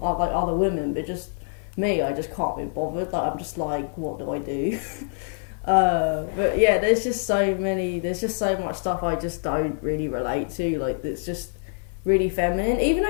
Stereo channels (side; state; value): right; silent; digital silence